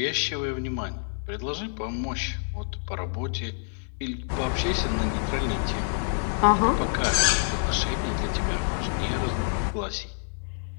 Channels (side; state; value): right; silent; digital silence